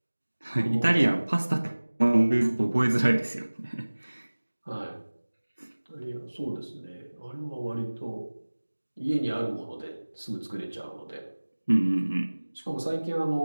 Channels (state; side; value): inverted; both; correlation -1.00